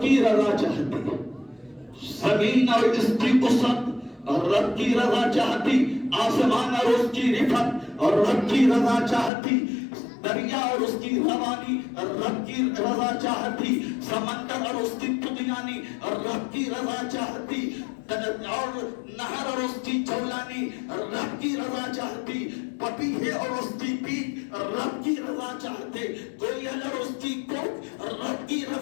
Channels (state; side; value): drops out; right; at 9.3 s